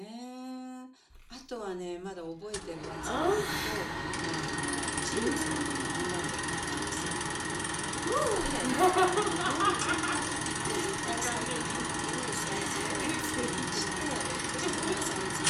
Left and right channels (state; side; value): identical; both; correlation 1.00